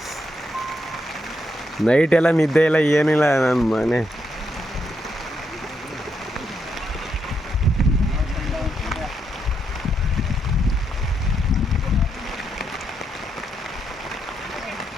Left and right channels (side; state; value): both; normal; correlation 0.80